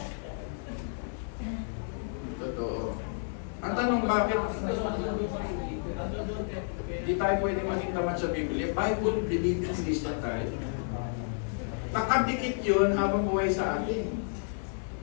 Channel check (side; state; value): right; silent; digital silence